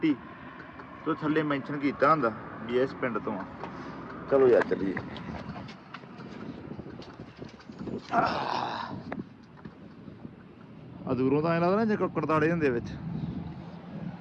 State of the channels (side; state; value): both; identical; correlation 1.00